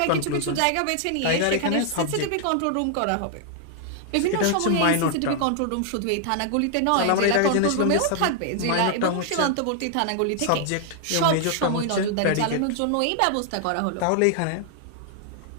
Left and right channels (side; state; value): both; different; correlation 0.00